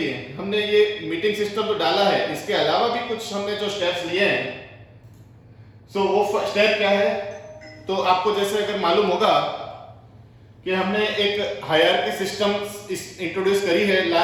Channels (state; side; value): identical; both; correlation 1.00